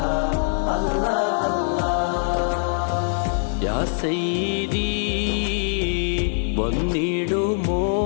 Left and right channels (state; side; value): silent; right; 59 dB below the other